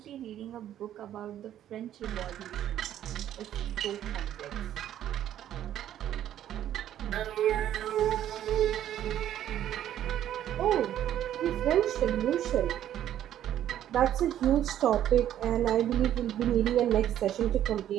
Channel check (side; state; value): left; quieter; 11.4 dB